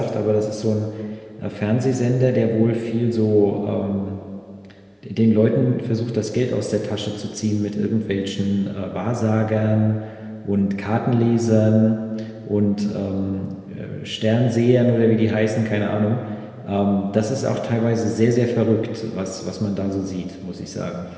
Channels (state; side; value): identical; both; correlation 1.00